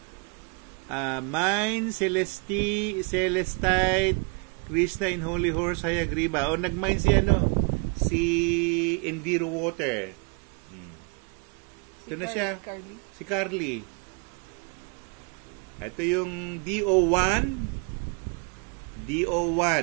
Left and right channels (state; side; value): quieter; left; 34.3 dB